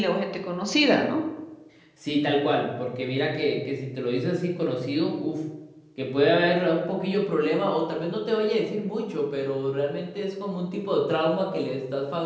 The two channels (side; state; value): both; identical; correlation 1.00